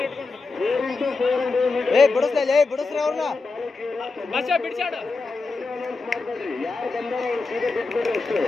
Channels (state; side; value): quieter; right; 3.9 dB